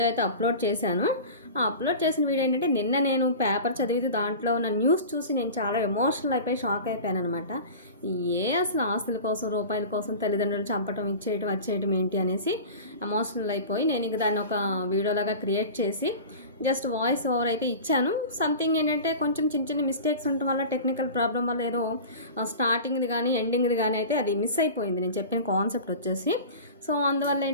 అయితే అప్లోడ్ చేశాను. ఆ అప్లోడ్ చేసిన వీడియో ఏంటంటే, నిన్న నేను పేపర్ చదివితే దాంట్లో ఉన్న న్యూస్ చూసి నేను చాలా ఎమోషనల్ అయిపోయి షాక్ అయిపోయాను అనమాట. అసలు ఆస్తుల కోసం, రూపాయల కోసం తల్లిదండ్రులు చంపటం, ఇచ్చేయటం, వచ్చేయటం ఏంటి అనేసి ఎమోషనల్ అయిపోయి నేను ఇంక దాన్ని ఒక వీడియోలాగా క్రియేట్ చేసి జస్ట్ వాయిస్ ఓవర్ అయితే ఇచ్చాను. సంథింగ్ ఏంటంటే కొంచెం చిన్న చిన్న మిస్టేక్స్ ఉండటం వల్ల, టెక్నికల్ ప్రాబ్లం వల్ల ఏదో స్టార్టింగ్ది కానీ ఎండింగ్ది కానీ అయితే అది మిస్ అయిపోయింది నేను చెప్పిన కాన్సెప్ట్ వచ్చేసి. సో అందువల్ల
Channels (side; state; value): both; inverted; correlation -0.35